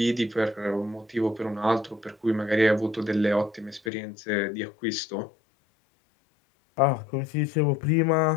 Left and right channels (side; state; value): right; drops out; at 3.9 s